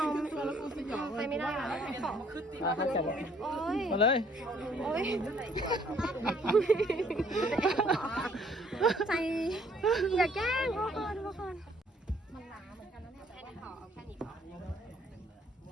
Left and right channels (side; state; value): both; normal; correlation 0.62